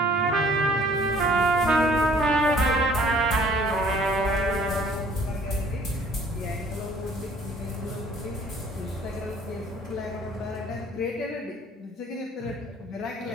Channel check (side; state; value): both; normal; correlation 0.56